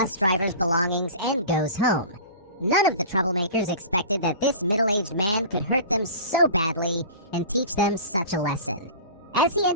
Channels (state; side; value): inverted; both; correlation -0.37